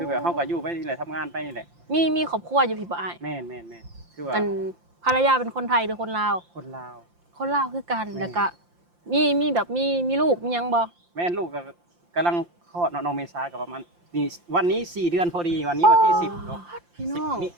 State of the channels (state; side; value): late; left; 5.8 ms